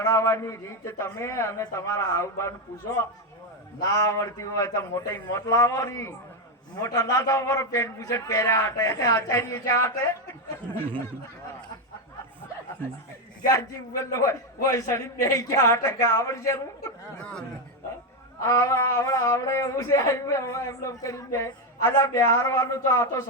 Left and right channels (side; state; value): both; normal; correlation 0.07